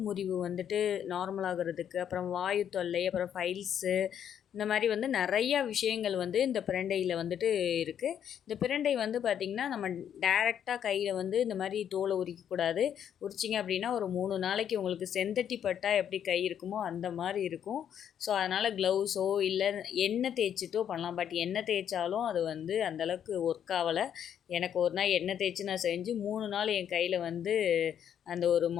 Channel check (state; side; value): quieter; right; 9.2 dB